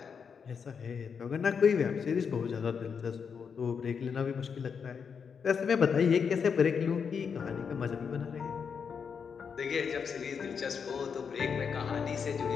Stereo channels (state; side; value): quieter; right; 6.4 dB